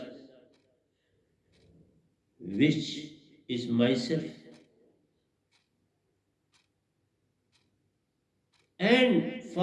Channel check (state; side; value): identical; both; correlation 1.00